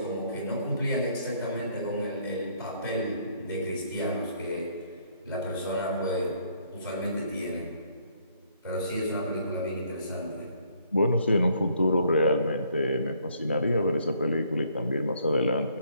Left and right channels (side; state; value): both; inverted; correlation -0.66